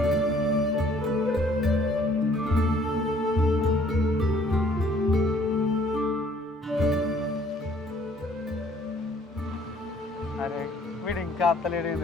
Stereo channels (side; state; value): both; normal; correlation 0.59